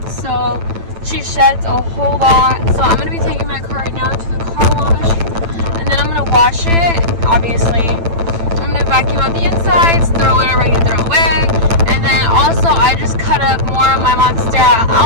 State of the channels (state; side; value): late; left; 9.0 ms